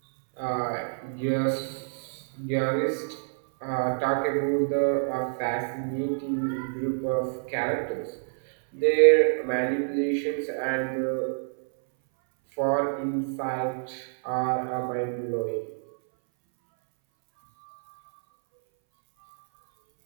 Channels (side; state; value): left; silent; 60 dB below the other